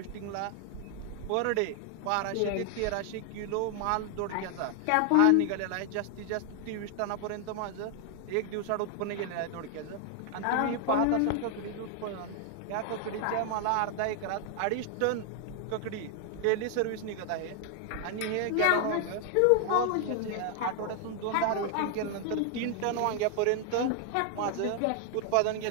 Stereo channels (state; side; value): different; both; correlation 0.00